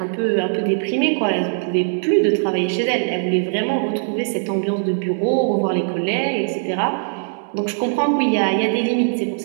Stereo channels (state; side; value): silent; left; digital silence